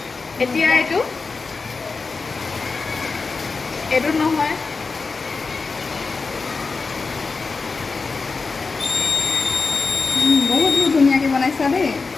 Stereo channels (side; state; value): right; quieter; 4.3 dB